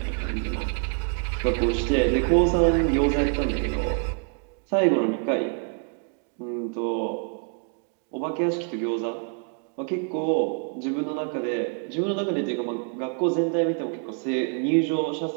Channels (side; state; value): left; quieter; 39.2 dB